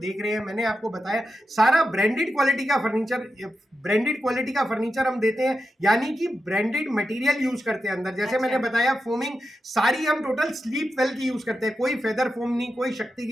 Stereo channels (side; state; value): both; normal; correlation 0.89